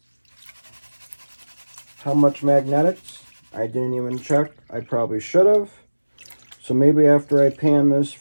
How much magnetics? I didn't even check. I probably should have. So maybe after I pan this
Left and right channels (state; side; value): inverted; both; correlation -1.00